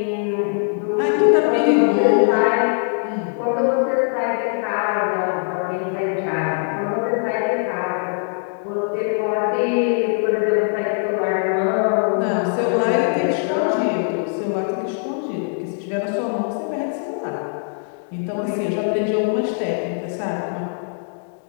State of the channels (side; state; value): right; silent; 60 dB below the other